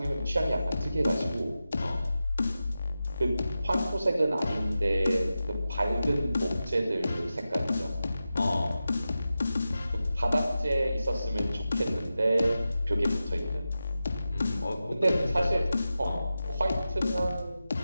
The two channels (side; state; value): both; inverted; correlation -0.92